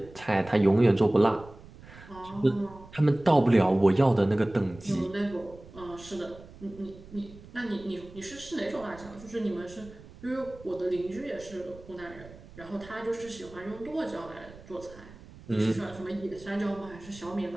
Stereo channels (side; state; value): right; noise; rumble, 19 dB below the sound